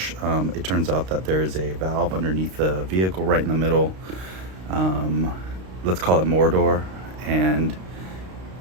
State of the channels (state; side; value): late; left; 32 ms